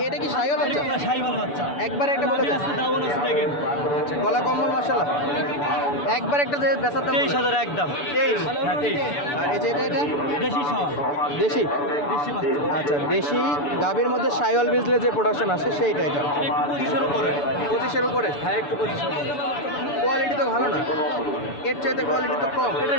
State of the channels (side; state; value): right; late; 6.9 ms